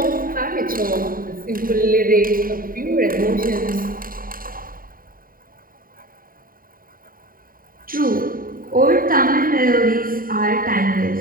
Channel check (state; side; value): late; left; 0.41 ms